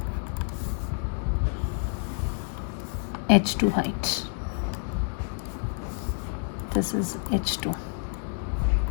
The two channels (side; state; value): right; silent; 59 dB below the other